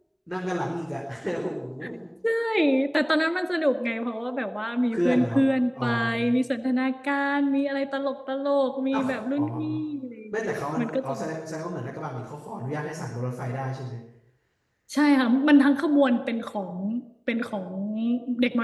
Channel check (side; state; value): both; identical; correlation 1.00